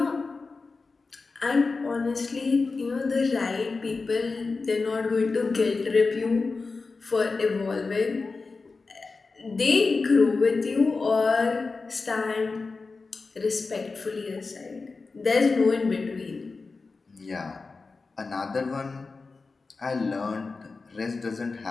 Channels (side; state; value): right; quieter; 4.1 dB